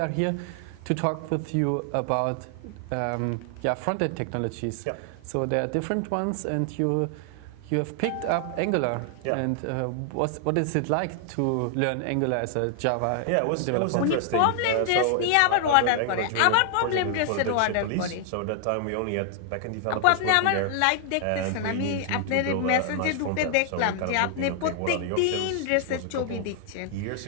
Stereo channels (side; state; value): both; different; correlation 0.00